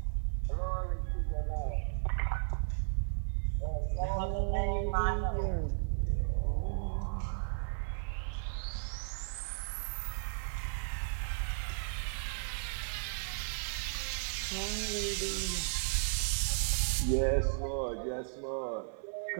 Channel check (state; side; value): silent; left; 54 dB below the other